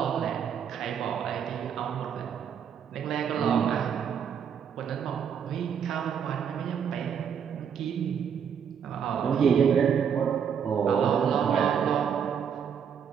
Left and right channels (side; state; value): left; quieter; 7.7 dB